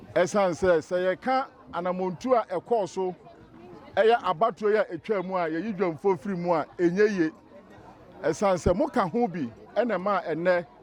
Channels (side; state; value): both; identical; correlation 1.00